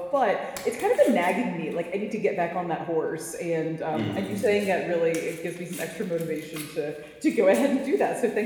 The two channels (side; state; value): both; identical; correlation 1.00